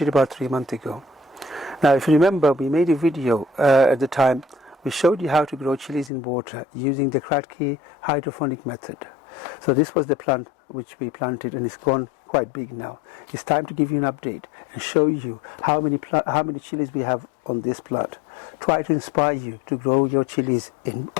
about 3 months ago. Now if you remember, we made a video at the time. We showed you how to grow chilies in water using the Kratky hydroponic method. So this was the plant which we planted and it's gone quite big now. It's time to give you an update and show you how many chilies we have on this plant. Try to inspire you to grow your chilies in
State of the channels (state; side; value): drops out; right; at 6.1 s